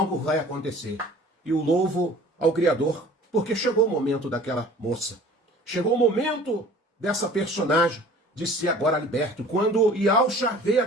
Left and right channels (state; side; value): normal; both; correlation 0.47